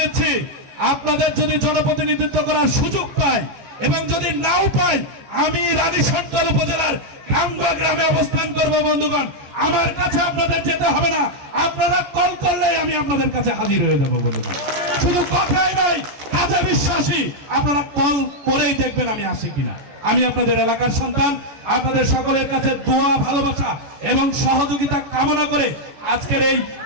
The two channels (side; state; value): left; late; 14 ms